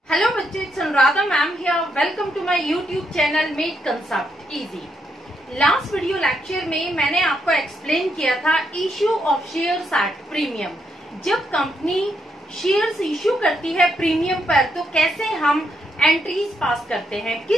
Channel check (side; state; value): both; normal; correlation 0.79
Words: हेलो बच्चे, it's Anuradha ma'am here. Welcome to my YouTube channel made concept easy. Last video lecture में मैंने आपको एक्सप्लेन किया था issue of shares at premium. जब कंपनी शेयर्स इश्यू करती है प्रीमियम पर तो कैसे हम एंट्रीज पास करते हैं,